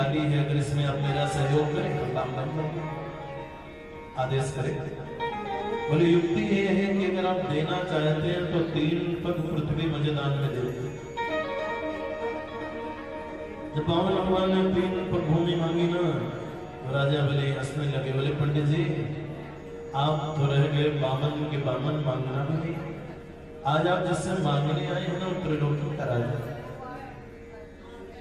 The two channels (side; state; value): both; identical; correlation 1.00